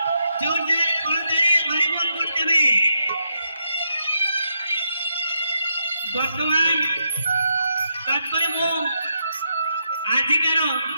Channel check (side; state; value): both; inverted; correlation -0.82